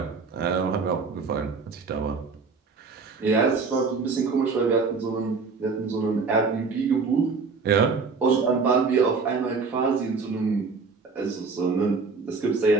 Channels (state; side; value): quieter; left; 4.7 dB